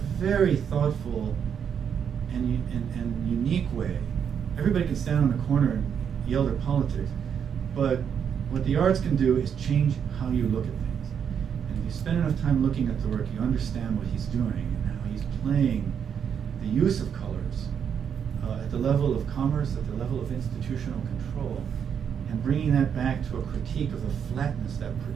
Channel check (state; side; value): quieter; left; 7.8 dB